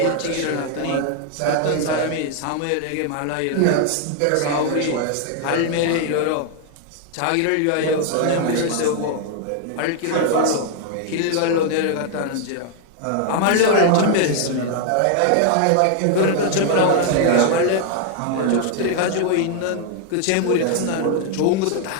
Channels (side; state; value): both; different; correlation 0.00